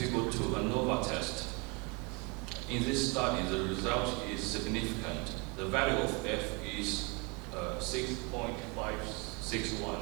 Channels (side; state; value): left; quieter; 30.3 dB